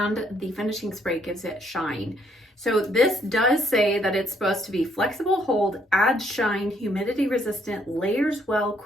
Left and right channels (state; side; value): normal; both; correlation 0.69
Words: the finishing spray gives it shine. So this does say that it's supposed to be flexible hold, adds shine, humidity resistant, layers well,